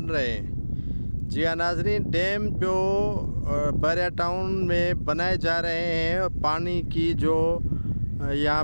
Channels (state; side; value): inverted; both; correlation -1.00